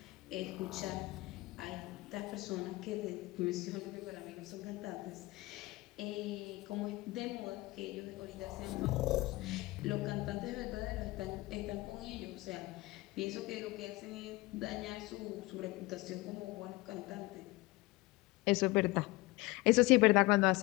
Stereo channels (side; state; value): right; quieter; 21.1 dB